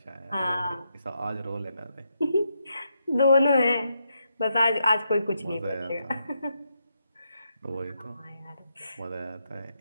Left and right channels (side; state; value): both; inverted; correlation -0.82